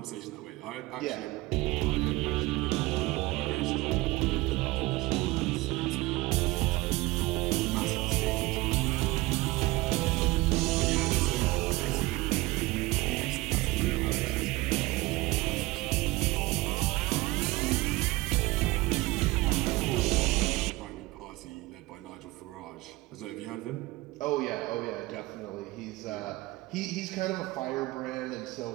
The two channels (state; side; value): quieter; left; 20.6 dB